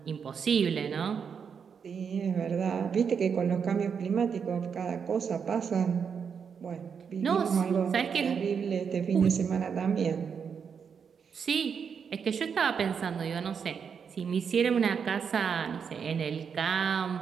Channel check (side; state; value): left; quieter; 6.6 dB